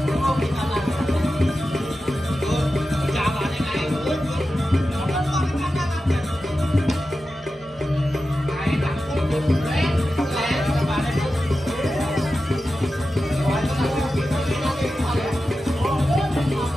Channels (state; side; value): normal; both; correlation 0.92